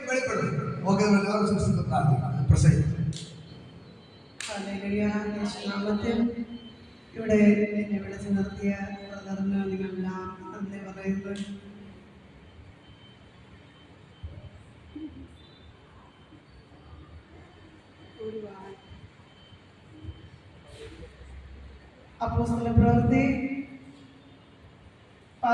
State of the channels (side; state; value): both; identical; correlation 1.00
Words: വെളിപ്പെടുന്നത്. ഓക്കെ, പ്രാർത്ഥിക്കണം, പ്രസംഗിക്കണം. നാമത്തിൽ ഇവിടെ എന്നെ വിളിച്ചു നിർത്തിയ ബ്രദറിന് നിങ്ങളെല്ലാം നന്ദി പറയുന്നു. അപ്പോസ്തല പ്രവൃത്തി